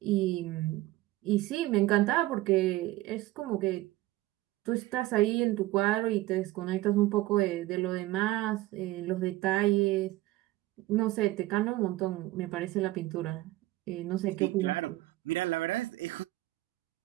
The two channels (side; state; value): left; quieter; 17.6 dB